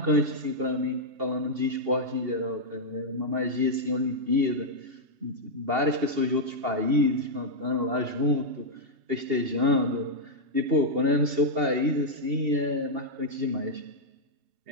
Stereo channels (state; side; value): late; left; 2.7 ms